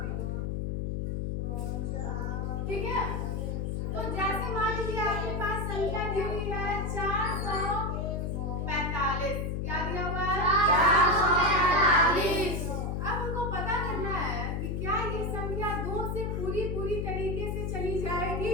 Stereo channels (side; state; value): left; noise; hum, 1 dB below the sound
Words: ठीक है। तो जैसे मान लीजिए आपके पास संख्या दी हुई है 445। क्या दिया हुआ है? 445। अब हमको पता करना है कि क्या ये संख्या 2 से पूरी तरीके से चली